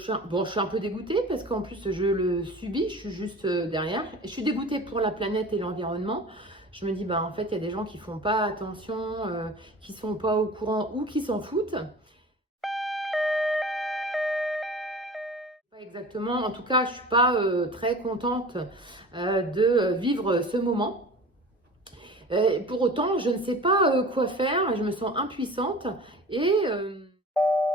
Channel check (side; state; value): both; normal; correlation 0.39